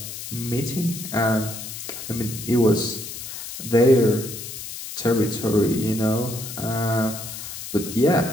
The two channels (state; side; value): noise; left; hiss, 9 dB below the sound